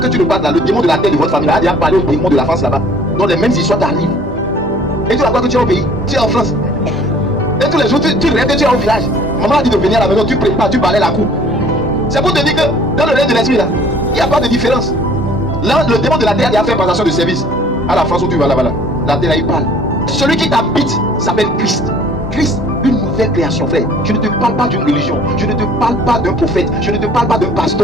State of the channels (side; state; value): both; normal; correlation 0.53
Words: tu ne partes là, le démon de la terre de votre famille a déjà parlé au démon de la France là-bas. Donc les mêmes histoires t'arrivent. Et tu vas voir que tu es au pays, tu es en France. Et tous les jours, tu rêves que tu es au village. Maman a dit de venir à la maison, tu prépares, tu balais la cour. C'est pour te dire que dans le règne de l'esprit là, il n'y a pas de différence. Là, le démon de la terre il a fait passation de service. À la France où tu vas là-bas, là, la terre là, il parle. Celui qui t'habite s'appelle Christ. Christ, une nouvelle création, frère. Je ne te parle pas d'une religion. Je ne te parle pas d'un prophète. Je ne te parle pas d'un